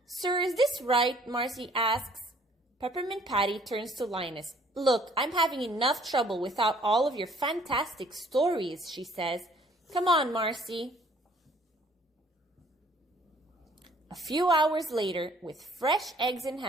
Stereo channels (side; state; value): both; normal; correlation 0.59